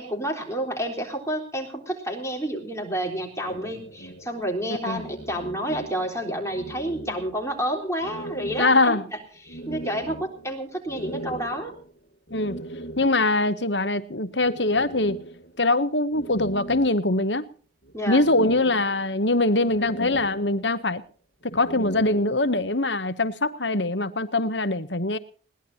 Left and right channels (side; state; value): both; normal; correlation -0.01